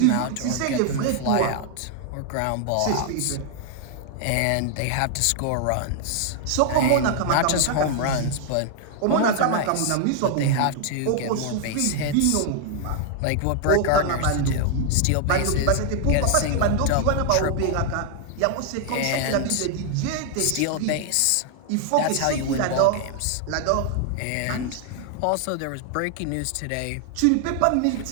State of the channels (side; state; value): both; different; correlation 0.00